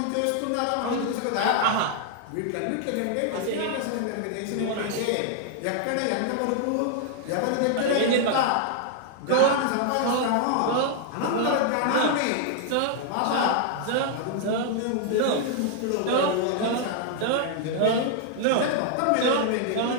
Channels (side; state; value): both; different; correlation 0.00